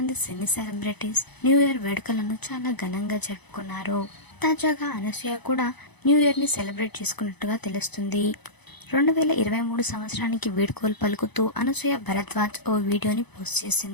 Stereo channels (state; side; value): late; right; 0.99 ms